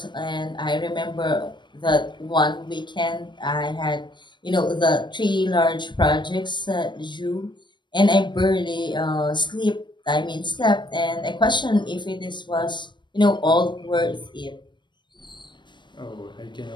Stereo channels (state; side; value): late; right; 0.22 ms